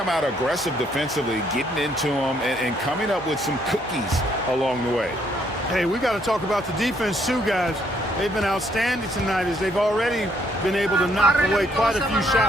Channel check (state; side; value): normal; both; correlation 0.69